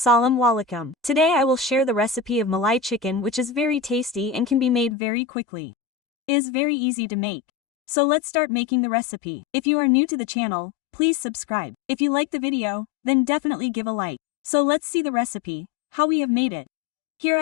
alaikum. Today I will share the recipe of Malai chicken, which is very tasty and can be made very quickly. It is very easy to make. So let's start making the recipe. If you are new to the channel, please subscribe. If you like the video, then definitely give a like. So let's see the recipe, how we have made it. Here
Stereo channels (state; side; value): drops out; right; at 5.0 s